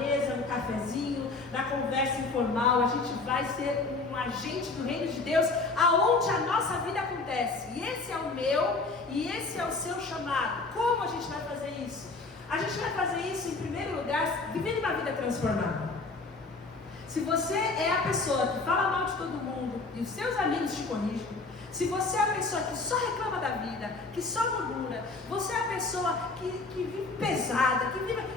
no cafezinho, na conversa informal. A gente vai ser um agente do reino de Deus aonde a nossa vida acontece. E esse é o meu e esse é o seu chamado. Como a gente vai fazer isso? A gente vai fazer isso, em primeiro lugar, vivendo uma vida transformada. Se você é a pessoa que fala mal de todo mundo e os seus amigos te corrigem, se você é a pessoa que só reclama da vida, que só murmura, você é a pessoa que vive pesada,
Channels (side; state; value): right; quieter; 3.6 dB